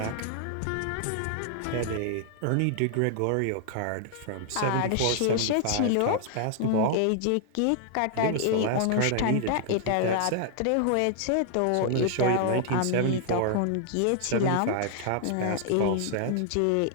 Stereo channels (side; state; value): both; different; correlation -0.01